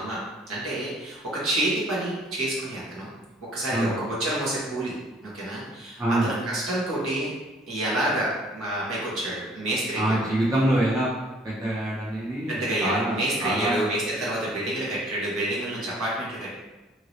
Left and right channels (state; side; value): normal; both; correlation 0.57